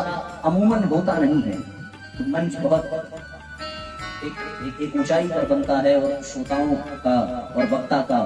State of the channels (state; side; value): identical; both; correlation 1.00